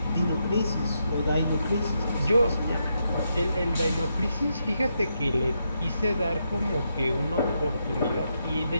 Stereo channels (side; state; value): both; inverted; correlation -0.82